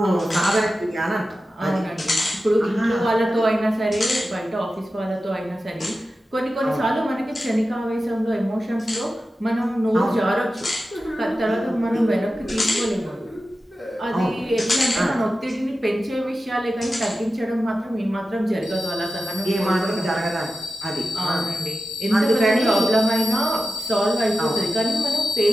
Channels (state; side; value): normal; both; correlation 0.93